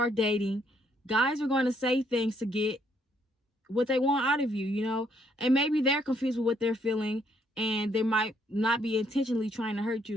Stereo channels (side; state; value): both; normal; correlation 0.70